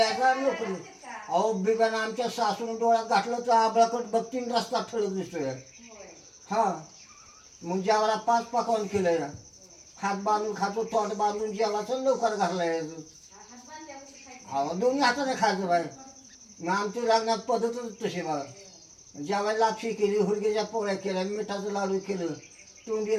नोकरी. अहो बिब्यानं आमच्या सासून डोळ्यात घातलं तर आबळाकट बघतीन रस्ता ठळक दिसतोय. हा मग जेवायला 5 पकवान केलंय. हात बांधून खातो तोंड बांधून जेवायचं लवकर घाललाय. अहो दोन्ही हाताने खायचं बाय. मग आमच्या लग्नात पद्धतच तशी बघा. जेवायला लापशी केली हुरगेच्या पोळ्या केल्या मिठाचं लाडू केलं तोंडी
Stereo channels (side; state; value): both; identical; correlation 1.00